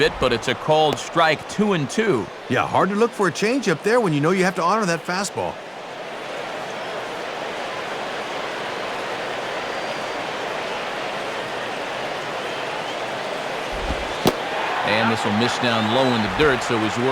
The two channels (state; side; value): identical; both; correlation 1.00